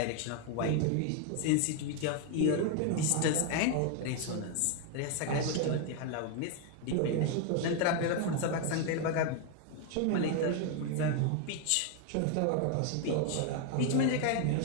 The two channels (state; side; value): different; both; correlation 0.01